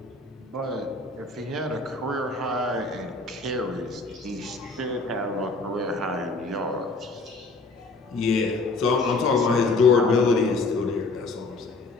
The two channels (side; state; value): right; quieter; 3.5 dB